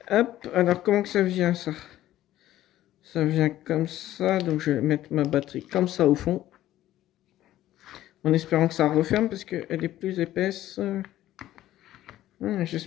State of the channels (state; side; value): quieter; right; 13.9 dB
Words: Hop, alors comment que ça vient ça? Ça vient comme ça, donc je vais mettre ma batterie comme ça au fond. En espérant que ça referme parce qu'elle est plus épaisse.